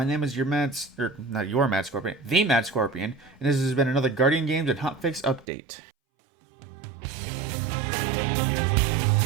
name is not your Mad Scorpion, the Mad Scorpion, and this has been another Guardian Games and Hotfix update.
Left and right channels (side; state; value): left; drops out; at 5.5 s